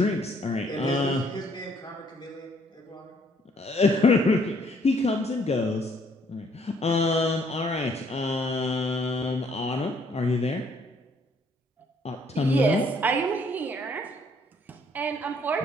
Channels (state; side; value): normal; both; correlation 0.65